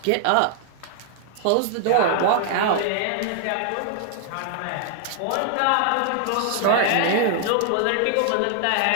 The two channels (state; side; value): different; both; correlation 0.00